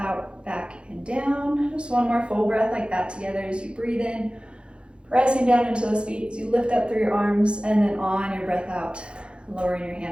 back and down. Just one more full breath like that together as you breathe in, pressing down into those feet as you lift up through your arms, and then on your breath out, lowering your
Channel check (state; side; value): late; left; 0.056 ms